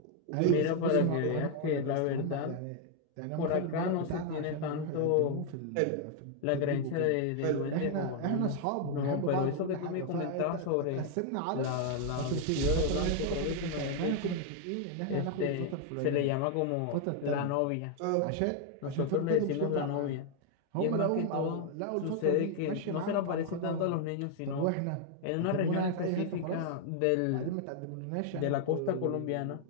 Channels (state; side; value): different; both; correlation 0.00